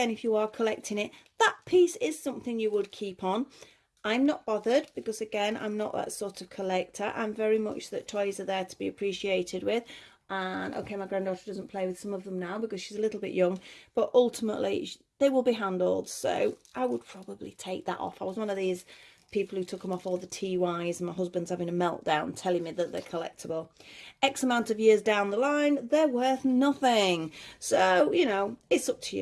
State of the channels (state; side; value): identical; both; correlation 1.00